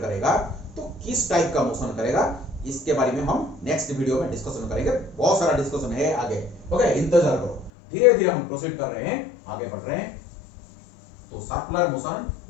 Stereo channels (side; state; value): right; drops out; at 7.7 s